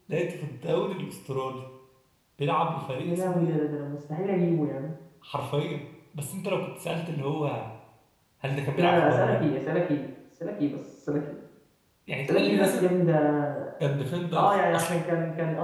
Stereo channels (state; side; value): identical; both; correlation 1.00